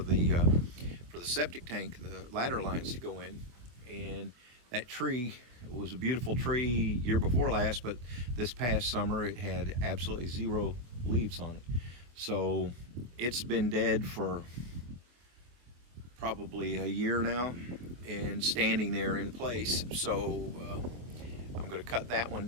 septic tank, the ladder lines to go in. And that tree was a beautiful tree year before last, but this past summer it had absolutely zero leaves on it. So it's been dead for probably a year now and standing there in place. So I'm going to cut that one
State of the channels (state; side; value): late; left; 24 ms